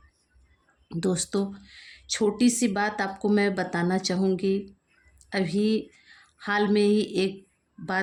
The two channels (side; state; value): both; identical; correlation 1.00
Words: दोस्तों, छोटी सी बात आपको मैं बताना चाहूँगी। अभी हाल में ही एक